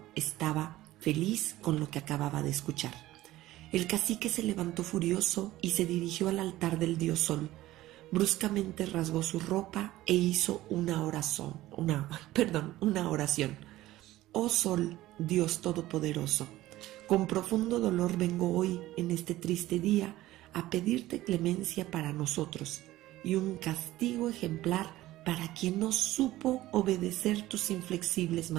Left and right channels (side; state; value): left; quieter; 16.1 dB